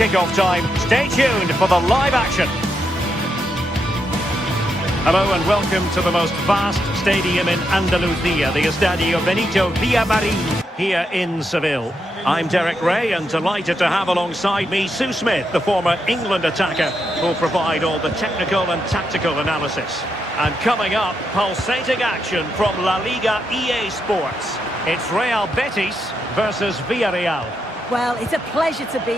time. Stay tuned for the live action. Hello and welcome to the most vast stadium in Andalusia, the Estadio Benito Villamarín here in Seville. I'm Derek Ray and delighted to have alongside me Sue Smith, the former England attacker, who'll provide all the technical and tactical analysis. And coming up, pulsating action from La Liga EA Sports. It's Real Betis versus Villarreal. Well, it's a pleasure to be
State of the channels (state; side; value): normal; both; correlation 0.82